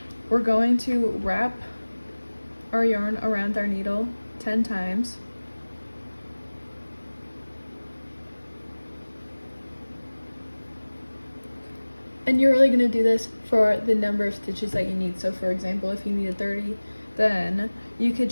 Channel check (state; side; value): inverted; both; correlation -1.00